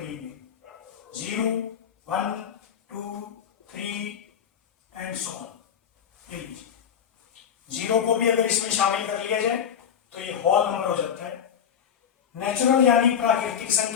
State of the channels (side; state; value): right; quieter; 8.2 dB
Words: 0, 1, 2, 3 एंड सो ऑन। 0 को भी अगर इसमें शामिल कर लिया जाए तो ये होल नंबर हो जाता है। नेचुरल यानी प्राकृतिक